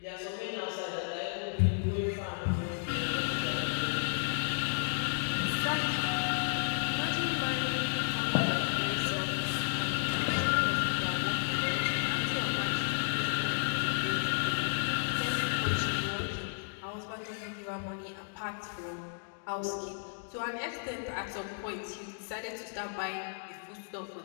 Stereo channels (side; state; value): right; silent; digital silence